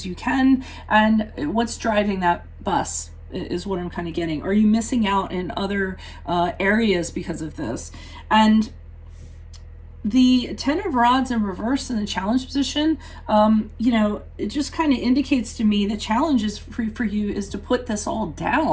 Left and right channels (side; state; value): both; identical; correlation 1.00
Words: you can. And what's driving that bus is what I'm kind of getting. Are you missing out in other areas because of this? And the Ten of Rods in reverse in the challenge position, it just kind of indicates to me the challenge is for you is to put this all